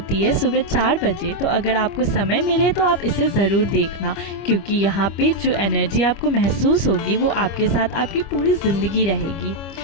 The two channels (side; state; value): right; late; 25 ms